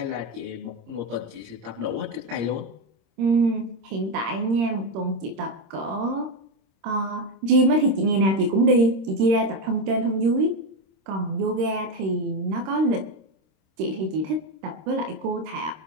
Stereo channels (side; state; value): left; late; 26 ms